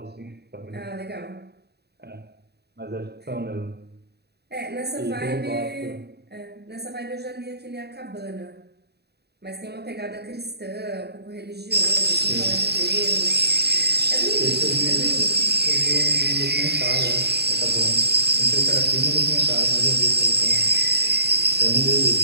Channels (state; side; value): late; left; 0.48 ms